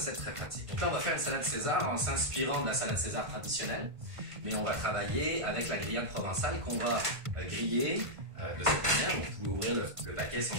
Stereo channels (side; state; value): left; late; 1.5 ms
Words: très pratiques. Donc là, on va faire une salade César en s'inspirant de la salade César traditionnelle, mais on va travailler avec la grillade provençale qu'on va griller de cette manière. Donc, vous pouvez ouvrir le paquet sans